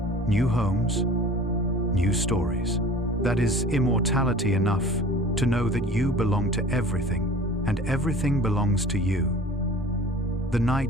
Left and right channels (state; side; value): normal; both; correlation 0.44